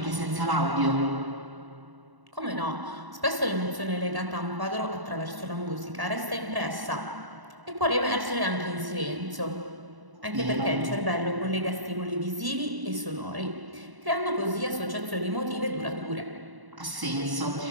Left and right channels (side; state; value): left; late; 1.0 ms